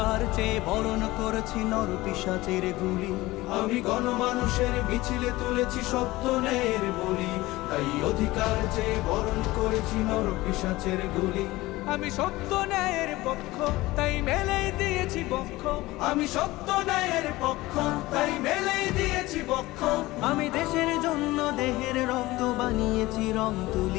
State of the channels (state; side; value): quieter; right; 19.1 dB